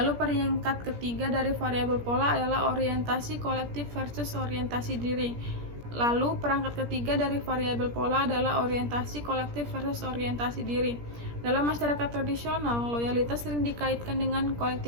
peringkat ketiga dari variabel pola adalah orientasi kolektif versus orientasi diri. Lalu perangkat ketiga dari variabel pola adalah orientasi kolektif versus orientasi diri. Dalam masyarakat tradisional, loyalitas sering dikaitkan dengan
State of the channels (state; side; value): late; left; 17 ms